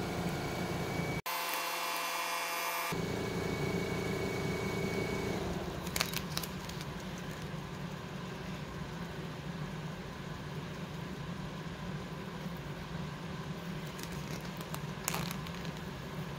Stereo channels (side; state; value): both; identical; correlation 1.00